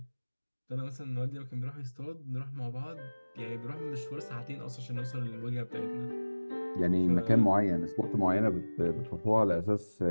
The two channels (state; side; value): inverted; both; correlation -1.00